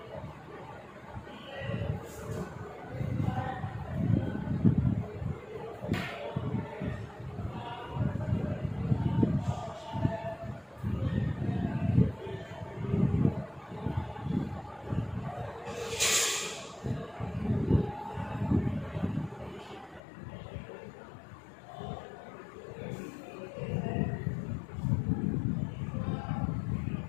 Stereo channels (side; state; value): right; drops out; at 20.0 s